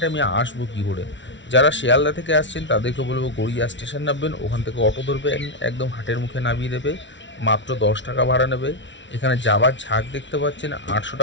আমি আসবো কী করে। যারা শিয়ালদা থেকে আসছেন তাদেরকে বলবো গড়িয়া স্টেশন নামবেন, ওখান থেকে অটো ধরবেন, একদম হাটের মুখে নামিয়ে দেবে, মাত্র 10 টাকা ভাড়া নেবে। এখানে জাবার ঝাঁক দেখতে পাচ্ছেন, 800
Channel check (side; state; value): right; late; 0.54 ms